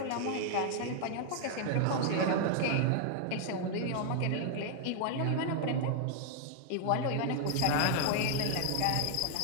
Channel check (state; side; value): different; both; correlation 0.00